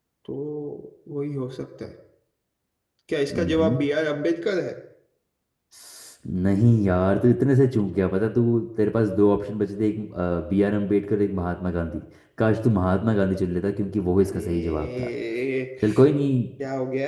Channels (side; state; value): both; identical; correlation 1.00